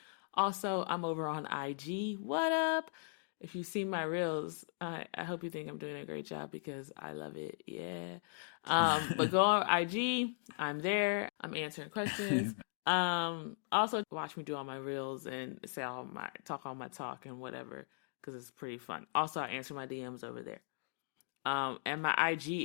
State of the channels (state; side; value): silent; right; digital silence